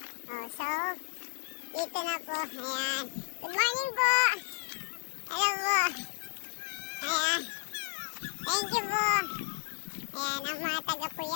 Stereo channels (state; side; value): silent; right; 56 dB below the other